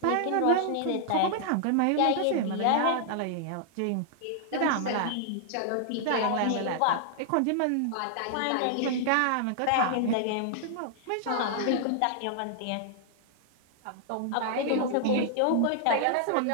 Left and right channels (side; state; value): both; different; correlation -0.01